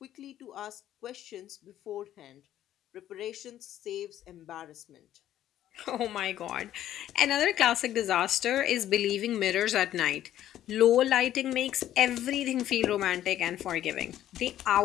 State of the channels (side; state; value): right; quieter; 12.1 dB